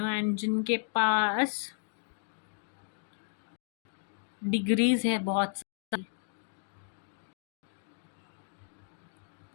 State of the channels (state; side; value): silent; right; digital silence